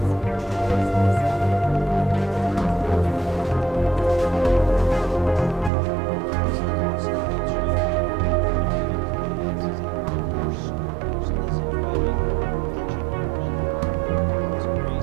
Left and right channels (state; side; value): drops out; left; at 5.7 s